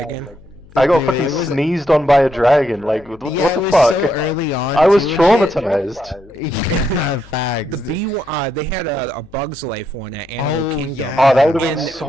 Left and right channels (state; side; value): noise; left; hum, 25 dB below the sound